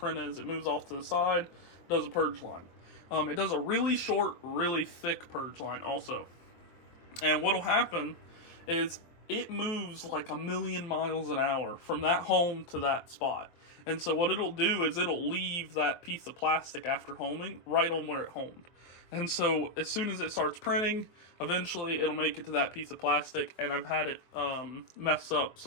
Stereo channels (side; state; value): right; late; 24 ms